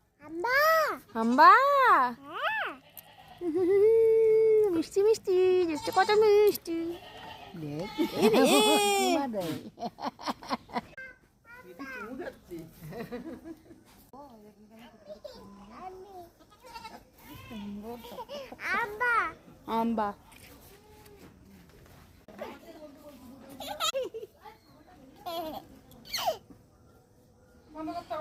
হাম্বা। হাম্বা। হ্যাঁ। মিষ্টি মিষ্টি দেখতে কত মিষ্টি। হাম্বা। আম্বা।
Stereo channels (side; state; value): both; identical; correlation 1.00